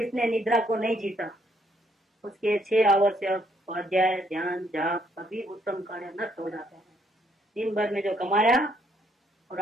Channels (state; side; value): normal; both; correlation 0.70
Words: निद्रा को नहीं जीता उसके 6 आवश्यक स्वाध्याय ध्यान जाप सभी उत्तम कार्य नष्ट हो जाते हैं। दिन भर में जो कमाया और